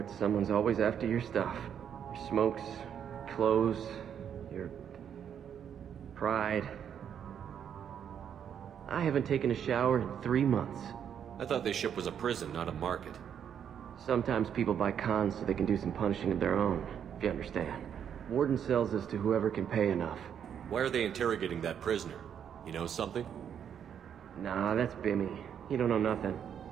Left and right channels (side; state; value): left; quieter; 8.6 dB